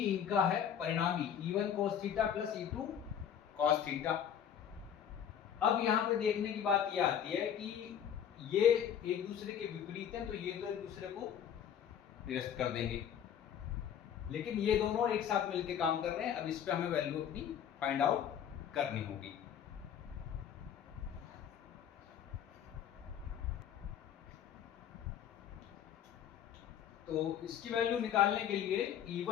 है परिणामी, E1 cos theta plus E2 cos theta. अब यहाँ पे देखने की बात ये आती है कि ये एक दूसरे के विपरीत हैं, तो ये तो एक दूसरे को निरस्त कर देंगे, लेकिन ये दोनों एक साथ मिलकर काम कर रहे हैं। अब इस पे हमें वैल्यू अपनी फाइंड आउट करनी होगी। तो इसकी वैल्यू निकालने के लिए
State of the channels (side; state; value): right; quieter; 9.0 dB